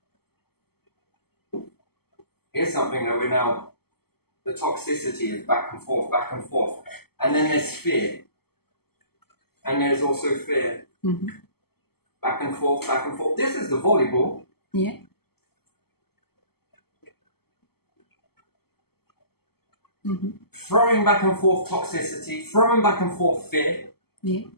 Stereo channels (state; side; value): late; right; 0.96 ms